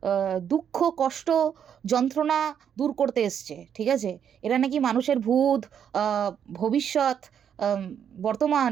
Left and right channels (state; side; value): quieter; left; 8.5 dB